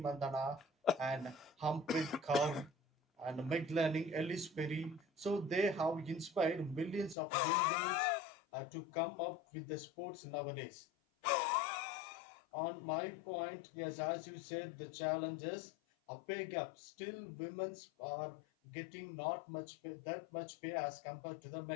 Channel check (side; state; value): right; drops out; at 7.2 s